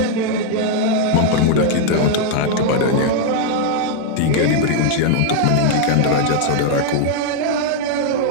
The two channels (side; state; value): both; different; correlation 0.00